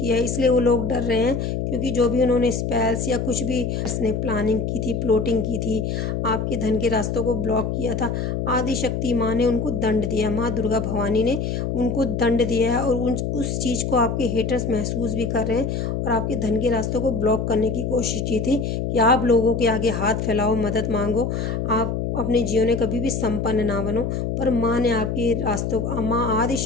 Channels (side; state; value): left; noise; hum, 1 dB below the sound